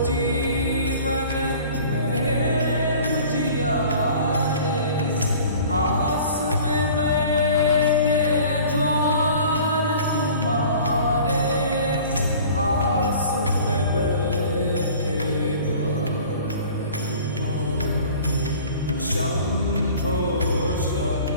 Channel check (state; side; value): inverted; both; correlation -0.46